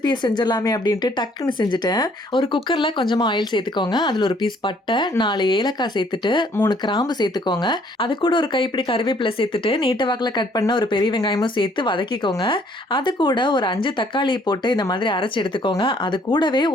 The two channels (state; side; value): normal; both; correlation 0.62